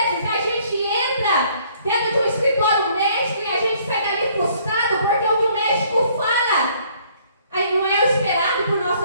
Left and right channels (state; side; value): inverted; both; correlation -0.62